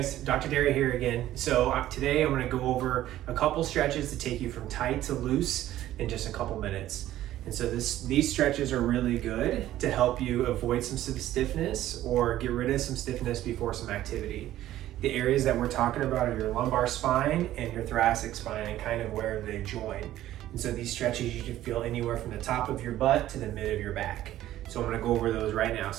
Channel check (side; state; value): left; quieter; 13.7 dB